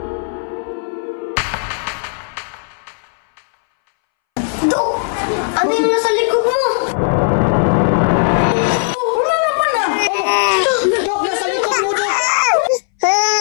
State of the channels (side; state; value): right; silent; 65 dB below the other